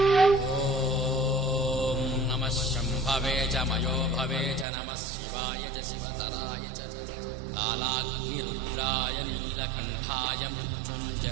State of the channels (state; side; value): drops out; left; at 4.7 s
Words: ఓం నమః శంభవే చ మయో భవే చ నమః శివాయ చ శివతరాయ చ కాలాగ్నిరుద్రాయ నీలకంఠాయ